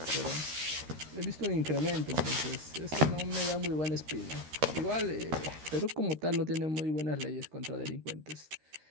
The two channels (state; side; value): late; left; 13 ms